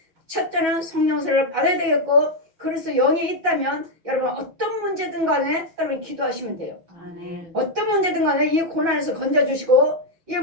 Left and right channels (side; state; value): left; late; 6.1 ms